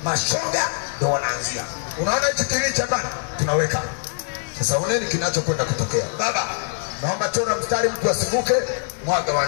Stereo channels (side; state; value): right; silent; digital silence